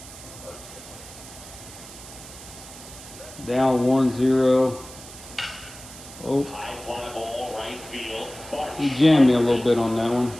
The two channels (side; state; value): right; noise; hiss, 16 dB below the sound